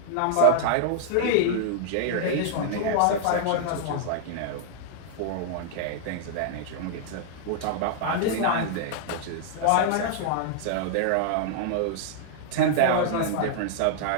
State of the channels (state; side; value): different; both; correlation -0.01